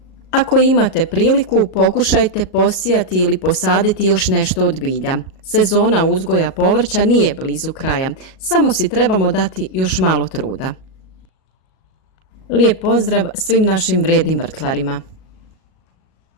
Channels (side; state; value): right; late; 37 ms